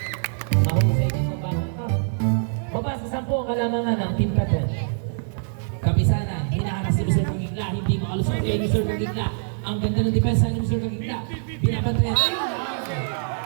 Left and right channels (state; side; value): silent; left; 63 dB below the other